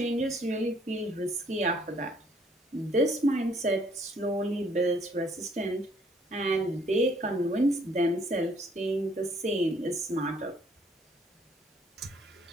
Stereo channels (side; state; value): both; normal; correlation 0.64